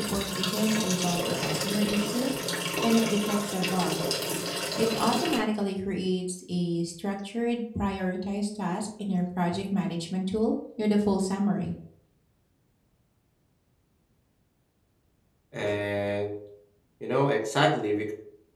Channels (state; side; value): identical; both; correlation 1.00